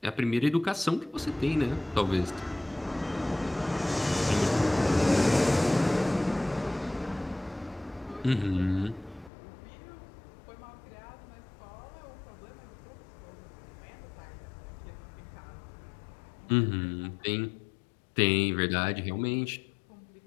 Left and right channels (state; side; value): drops out; right; at 9.3 s